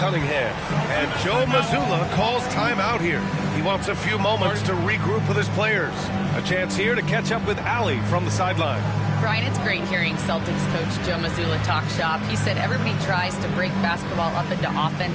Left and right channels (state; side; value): identical; both; correlation 1.00